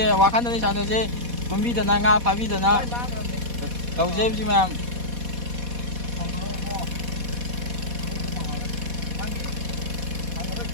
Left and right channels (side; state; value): left; late; 4.1 ms